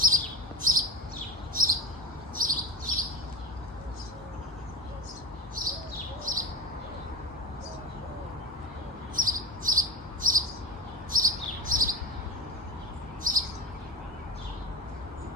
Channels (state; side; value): normal; both; correlation 0.24